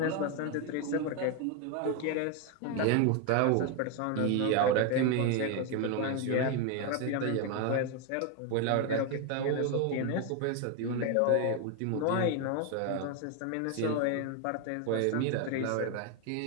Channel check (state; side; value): different; both; correlation 0.01